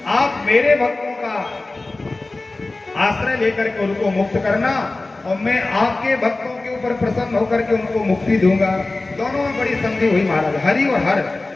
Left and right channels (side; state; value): right; quieter; 3.1 dB